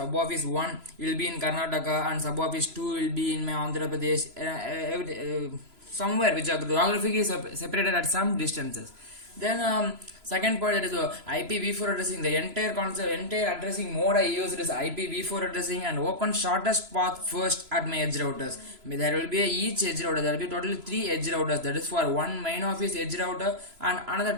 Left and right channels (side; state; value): left; late; 3.0 ms